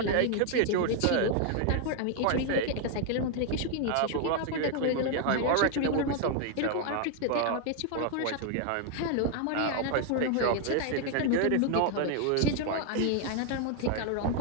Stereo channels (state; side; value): different; both; correlation 0.00